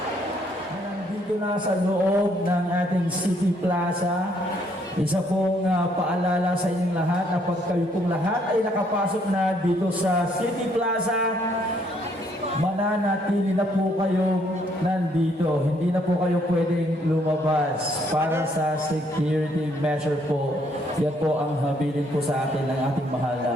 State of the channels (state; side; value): normal; both; correlation 0.68